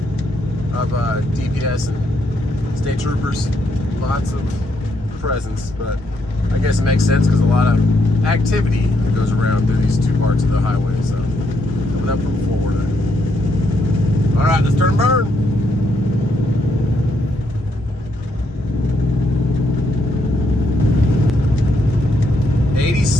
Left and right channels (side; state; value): both; normal; correlation 0.76